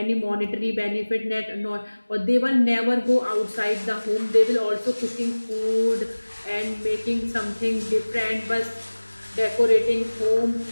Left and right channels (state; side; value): inverted; both; correlation -1.00